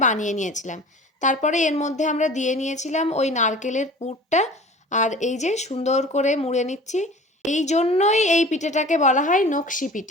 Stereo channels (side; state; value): both; normal; correlation 0.42